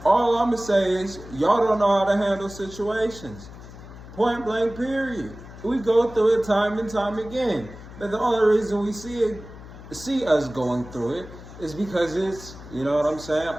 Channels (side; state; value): left; noise; hum, 16 dB below the sound